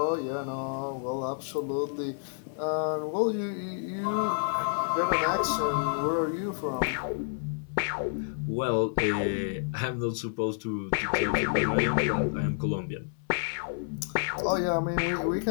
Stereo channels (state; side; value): silent; right; 58 dB below the other